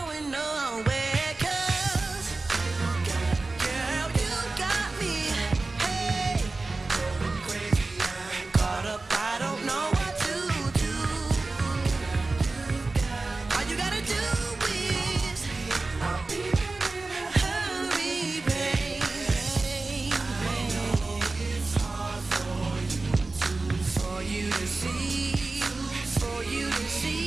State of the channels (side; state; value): left; quieter; 3.4 dB